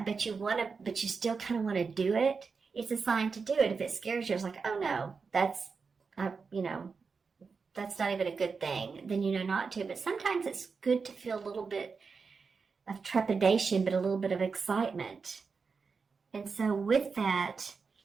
you still kind of want to do it. It's a sign to do it. If it scares you, it's like, oh no, that's, that's not even a good thing, then you know not to. But sometimes it's good to feel a little bit of trepidation, but a little bit of excitement. And so with that,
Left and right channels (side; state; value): left; quieter; 5.0 dB